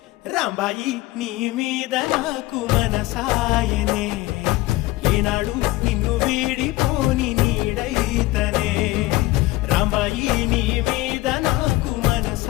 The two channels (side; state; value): right; quieter; 18.8 dB